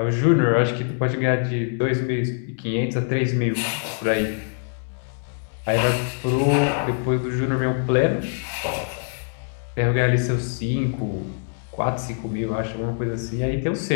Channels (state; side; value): silent; right; digital silence